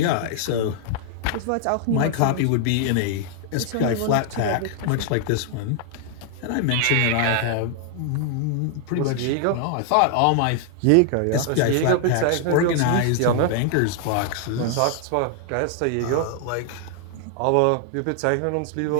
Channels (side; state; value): both; different; correlation 0.00